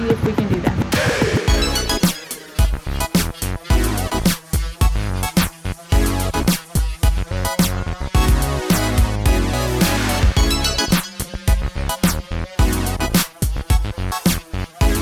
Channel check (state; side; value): identical; both; correlation 1.00